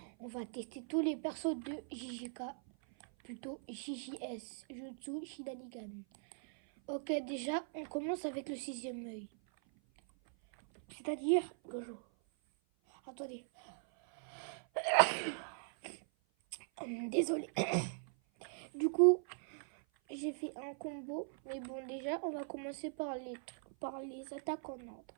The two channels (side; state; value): left; silent; 51 dB below the other